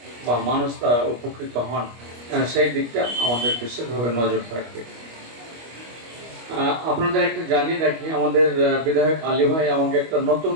বা মানুষ তা উপকৃত হন, সেই দিকটা আমাদের বিশেষভাবে নজর থাকবে। আপনাদের একটা জানিয়ে রাখি, আমাদের বিধায়ক আলী ভাই আমাকে একটা নতুন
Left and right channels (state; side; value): late; left; 25 ms